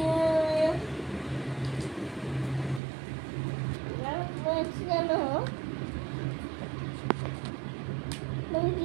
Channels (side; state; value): left; drops out; at 2.8 s